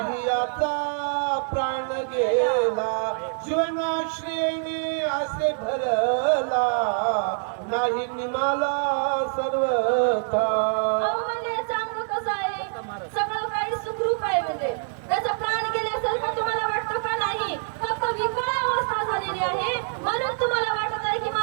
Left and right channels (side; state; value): left; silent; digital silence